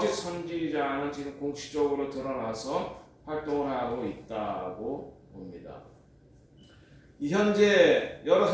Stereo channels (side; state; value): both; identical; correlation 1.00